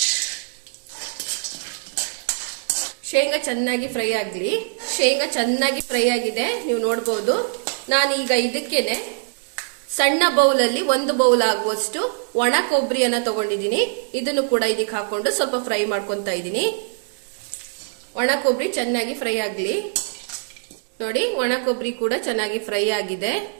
ಶೇಂಗಾ ಚೆನ್ನಾಗಿ ಫ್ರೈ ಆಗಲಿ. ಶೇಂಗಾ ಚೆನ್ನಾಗಿ ಫ್ರೈ ಆಗಿದೆ, ನೀವು ನೋಡಬಹುದು. ನಾನೀಗ ಇದಕ್ಕೇನೆ ಸಣ್ಣ ಬೌಲ್ ಅಲ್ಲಿ 1 ಬೌಲ್ ಆಗುವಷ್ಟು ಒಣ ಕೊಬ್ಬರಿಯನ್ನ ತಗೊಂಡಿದ್ದೀನಿ. ಇದನ್ನು ಕೂಡ ಇದಕ್ಕೆ ಹಾಕೊಂಡು ಸ್ವಲ್ಪ ಫ್ರೈ ಮಾಡ್ಕೊಂತಾ ಇದ್ದೀನಿ. ಒಣ ಕೊಬ್ಬರಿ ಚೆನ್ನಾಗಿ ಫ್ರೈ ಆಗಲಿ. ನೋಡಿ, ಒಣ ಕೊಬ್ಬರಿ ಕೂಡ ಚೆನ್ನಾಗಿ ಫ್ರೈ ಆಗಿದೆ.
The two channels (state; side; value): silent; left; digital silence